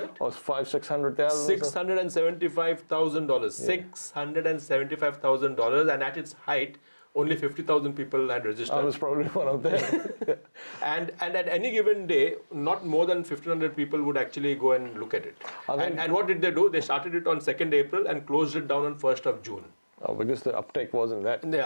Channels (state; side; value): inverted; both; correlation -1.00